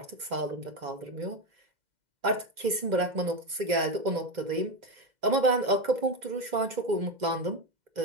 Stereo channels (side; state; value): left; late; 2.0 ms